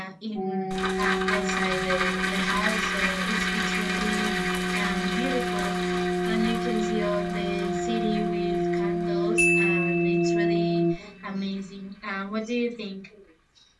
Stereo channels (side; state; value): both; identical; correlation 1.00